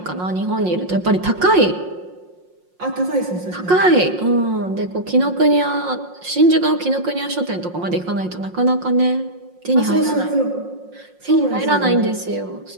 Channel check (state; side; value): late; left; 5.6 ms